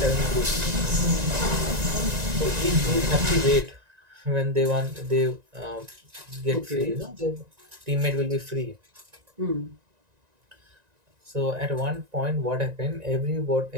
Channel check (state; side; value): late; left; 1.9 ms